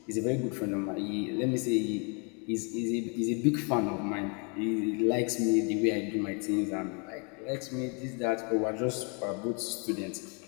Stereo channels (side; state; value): right; quieter; 35.7 dB